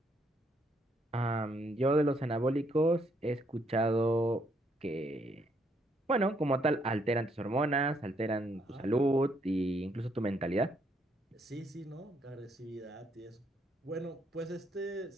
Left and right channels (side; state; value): both; normal; correlation 0.72